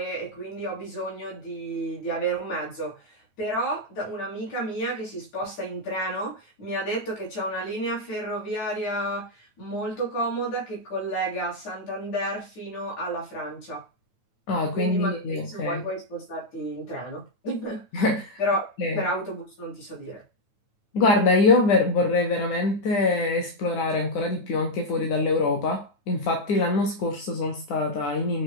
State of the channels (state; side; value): late; right; 9.2 ms